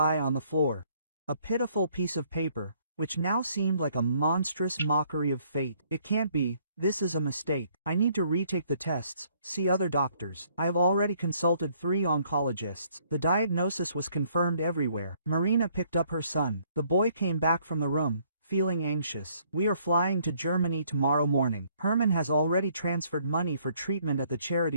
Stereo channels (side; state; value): both; inverted; correlation -0.65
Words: on the floor. A pitiful piece of paper, which now seemed like a monstrous mockery of fate. It can't be, this is a mistake. I need to retake the tests, see other doctors. I have already consulted 3 oncologists. The diagnosis was confirmed everywhere. Marina picked up her son. The boy came back from the room, feeling anxious. We are flying to Germany tomorrow morning. Herman has already transferred money for treatment at the